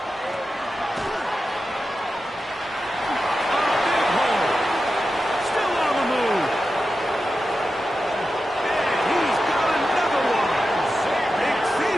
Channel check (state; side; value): normal; both; correlation 0.91